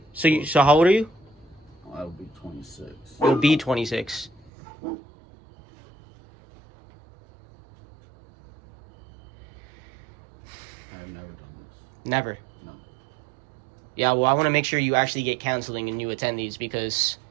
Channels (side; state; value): left; drops out; at 4.5 s